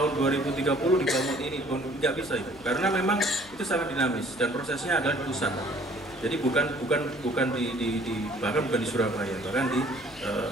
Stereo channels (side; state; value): left; noise; hum, 23 dB below the sound